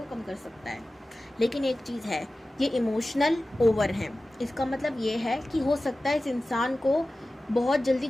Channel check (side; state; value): both; normal; correlation 0.96